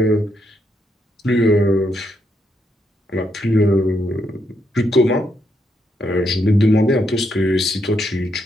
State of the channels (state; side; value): normal; both; correlation 0.78